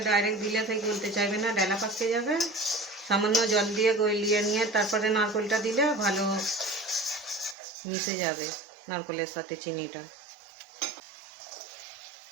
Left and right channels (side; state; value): left; drops out; at 7.6 s